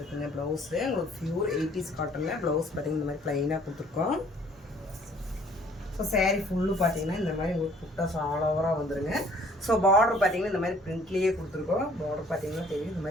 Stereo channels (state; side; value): normal; both; correlation 0.57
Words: ப்ளவுஸு உங்களுக்கு பியூர் 80s காட்டனில் ப்ளவுஸ் பார்த்தீங்கன்னா இந்த மாதிரி ப்ளைனாக கொடுத்துருக்கோம். ஸோ சாரீ ஃபுல்லு பார்த்தீங்கன்னா இந்த மாதிரி உங்களுக்கு புட்டாஸ் ஆல் ஓவராக வந்துருங்க. ஸோ பார்டர் பார்த்தீங்கன்னா இந்த மாதிரி பிரிண்ட்லேயே கொடுத்துருக்கோம். பார்டர் பார்த்தீங்கன்னா தெரியும் இந்த